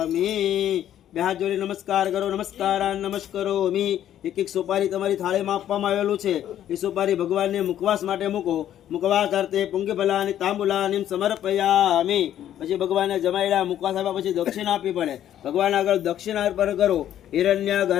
બે હાથ જોડી નમસ્કાર કરો. નમસ્કારાન નમસ્કરોમિ. એક એક સોપારી તમારી થાળીમાં આપવામાં આવેલું છે. એ સોપારી ભગવાનને મુખવાસ માટે મૂકો. મુખવાસ અર્થે પુંગફલાની તાંબુલાની સમર્પયામિ. પછી ભગવાનને જમાડ્યા મુખવાસ આપ્યા પછી દક્ષિણા આપવી પડે. ભગવાન આગળ દક્ષિણા અર્પણ કરો. હિરણ્ય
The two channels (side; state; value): right; quieter; 11.3 dB